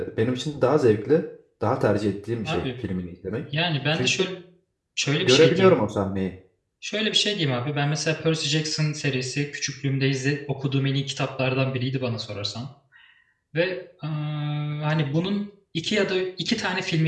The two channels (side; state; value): both; identical; correlation 1.00